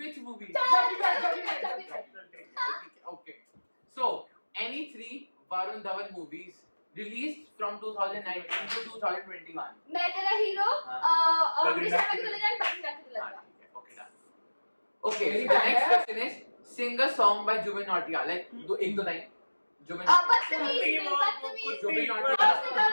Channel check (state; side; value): inverted; both; correlation -1.00